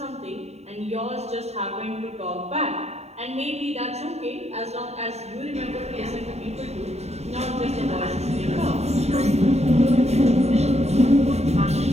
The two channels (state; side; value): late; left; 0.31 ms